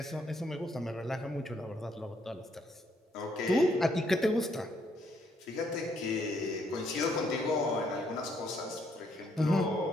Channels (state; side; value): normal; both; correlation 0.71